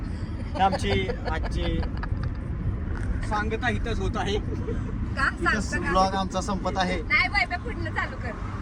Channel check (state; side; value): identical; both; correlation 1.00